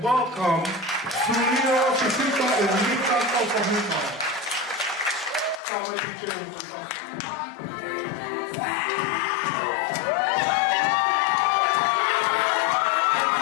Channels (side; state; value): right; drops out; at 5.6 s